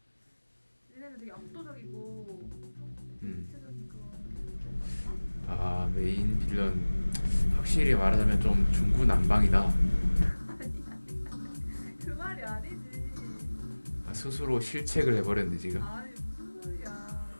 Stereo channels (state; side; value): inverted; both; correlation -1.00